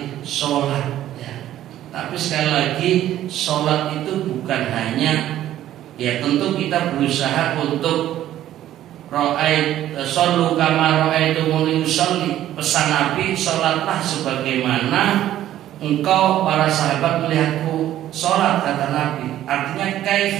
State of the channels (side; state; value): left; quieter; 12.7 dB